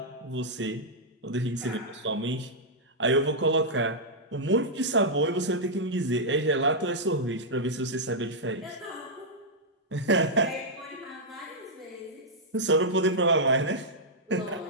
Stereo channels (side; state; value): both; normal; correlation -0.07